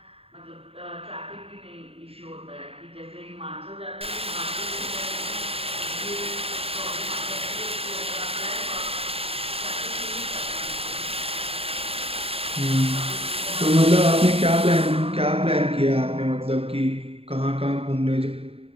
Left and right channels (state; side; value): late; left; 0.28 ms